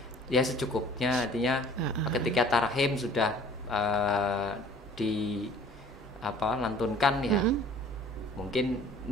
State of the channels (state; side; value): normal; both; correlation 0.51